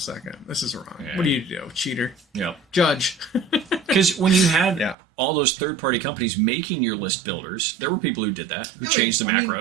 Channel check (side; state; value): left; drops out; at 5.0 s